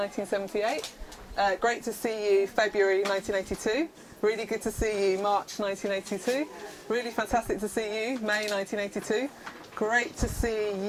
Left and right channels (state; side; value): identical; both; correlation 1.00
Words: Great to see you, February 1982. Really good to see you, March 1982. Really fantastic to see you, May 1982. Great to see